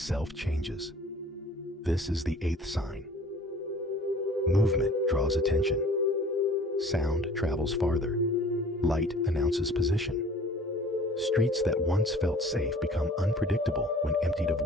changes. This is the eighth sign. Movement draws attention. Sound travels farther. Light announces position. Streets that once felt safe become unpredictable when emptied of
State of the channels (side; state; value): both; normal; correlation 0.49